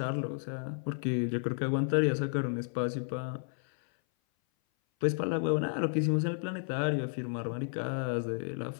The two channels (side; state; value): right; silent; 56 dB below the other